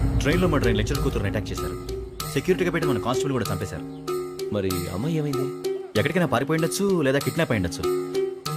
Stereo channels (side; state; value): both; identical; correlation 1.00